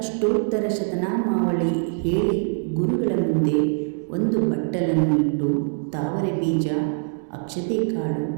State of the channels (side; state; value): left; silent; digital silence